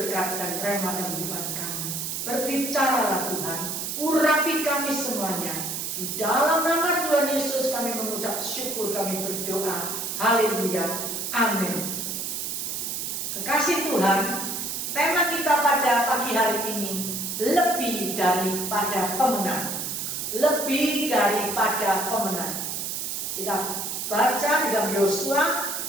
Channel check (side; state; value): right; noise; hiss, 3 dB below the sound